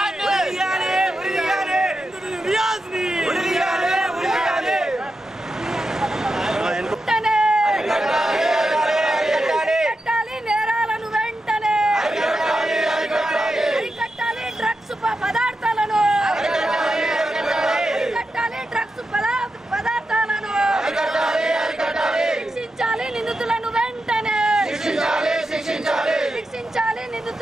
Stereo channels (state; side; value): normal; both; correlation 0.89